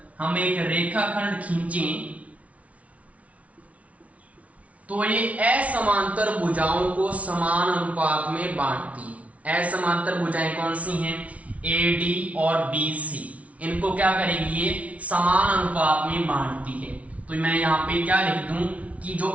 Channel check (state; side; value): late; left; 0.066 ms